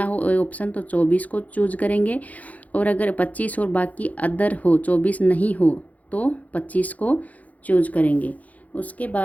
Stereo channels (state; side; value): late; right; 0.074 ms